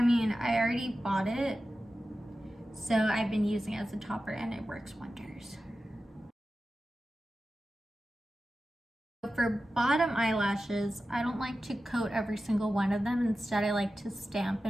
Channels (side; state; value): both; normal; correlation 0.93